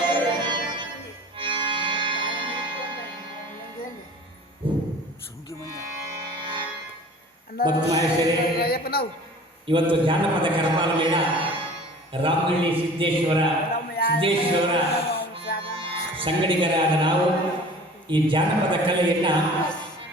ಭಕ್ತ ಮಹೇಶ್ವರೇ, ಇವತ್ತು ಜಾನಪದ ಕರಪಾಲ ಮೇಳ ರಾಮನಹಳ್ಳಿ ಸಿದ್ದೇಶ್ವರ ಸಂಗಡಿಗರಾದ ನಾವು ಈ ಜಾನಪದ ಕಲೆಯನ್ನು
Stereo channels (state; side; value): normal; both; correlation 0.44